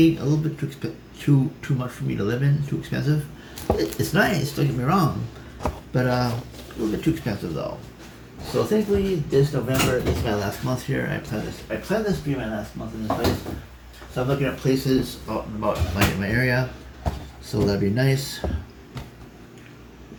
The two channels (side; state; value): both; identical; correlation 1.00